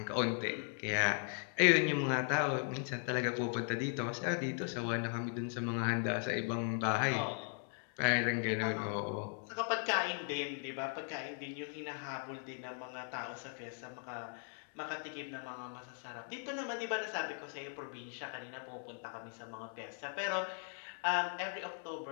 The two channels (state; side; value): silent; right; 52 dB below the other